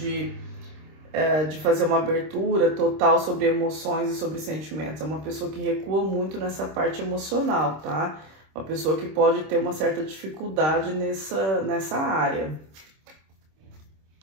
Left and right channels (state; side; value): late; left; 26 ms